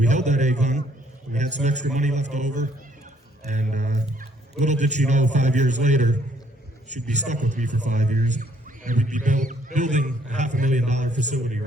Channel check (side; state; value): both; normal; correlation 0.66